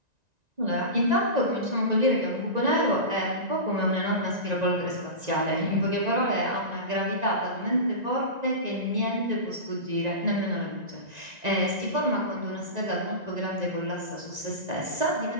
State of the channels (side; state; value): left; late; 1.9 ms